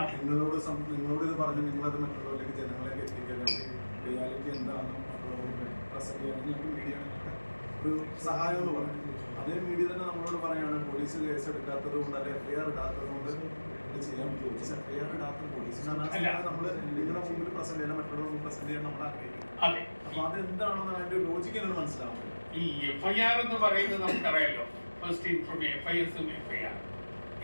നിങ്ങളോട് ഇത് പറഞ്ഞ് നിങ്ങളത് മറ്റുള്ളവരിലേക്ക് ജനങ്ങളിലേക്ക് എത്തിക്കുക, അല്ലെങ്കിൽ റിയാലിറ്റി എന്താണെന്ന് മറ്റുള്ളവർക്ക് പ്രസന്റ് ചെയ്യാൻ ഞങ്ങൾക്ക് മീഡിയ ഒരു സഹായം എന്ന് പറയും. അതേ മീഡിയ തന്നെ നമ്മളോട് പറയുകയാണ് പോലീസ് കേസ് എടുക്കാത്തത് കൊണ്ട് അല്ലെങ്കിൽ FIR ഇടാത്തത് കൊണ്ട് ഇത് ചെയ്യാൻ പറ്റും. പോലീസ് FIR ഇടാത്ത പോലീസിനാണ് നമ്മൾ നിങ്ങളുടെ മുമ്പിൽ പ്രസന്റ് ചെയ്യാൻ മറ്റുള്ളവർ പ്രസന്റ് ചെയ്യാൻ നമ്മൾ ആഗ്രഹിക്കുന്നത്. അപ്പൊ അത് എന്താണെന്ന് അതിന്റെ ലോജിക്ക് എന്നോട് മനസ്സിലാവുന്നത്. ഈ FIR എന്ന് പറയുന്നത് നമുക്കറിയാലോ, ഫസ്റ്റ് ഇൻഫർമേഷൻ FISഉം FIR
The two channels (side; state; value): both; inverted; correlation -1.00